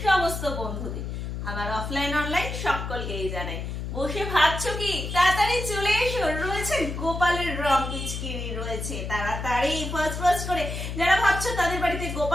সমস্ত বন্ধুদের। আমার অফলাইন অনলাইন সকলকেই জানাই। বসে ভাবছো কি? তাড়াতাড়ি চলে এসো, রয়েছে গোপালের রং পিচকিরি রয়েছে। তাড়াতাড়ি ফার্স্ট করে যারা ভাবছো তাদের বাড়িতে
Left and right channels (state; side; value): noise; left; hum, 5 dB below the sound